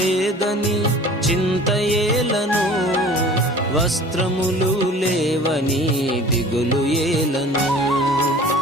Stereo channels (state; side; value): normal; both; correlation 0.45